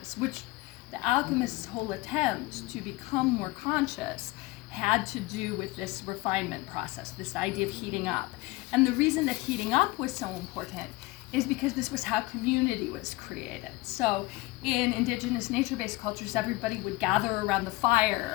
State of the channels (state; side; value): quieter; right; 20.7 dB